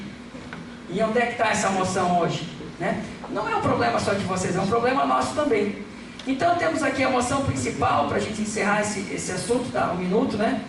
E onde é que está essa moção hoje, né? Não é um problema só de vocês, é um problema nosso também. Então temos aqui a moção principal, para a gente encerrar esse assunto, tá? 1 minuto, né?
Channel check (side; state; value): both; identical; correlation 1.00